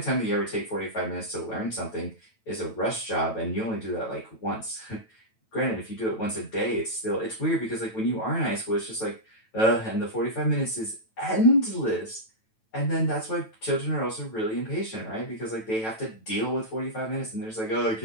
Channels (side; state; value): right; late; 9.1 ms